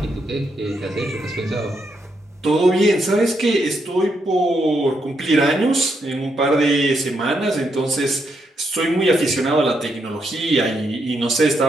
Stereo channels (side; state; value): both; normal; correlation 0.79